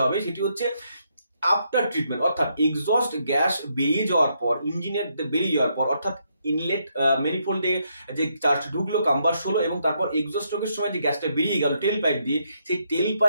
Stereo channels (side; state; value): both; inverted; correlation -0.76